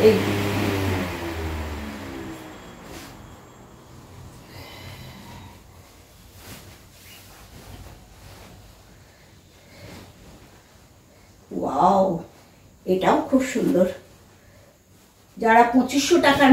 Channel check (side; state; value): both; identical; correlation 1.00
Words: এই ওয়াও, এটাও খুব সুন্দর। যারা 2500 টাকার